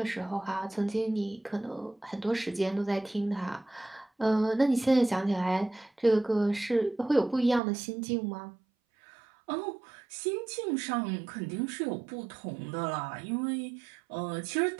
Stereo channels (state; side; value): drops out; left; at 7.6 s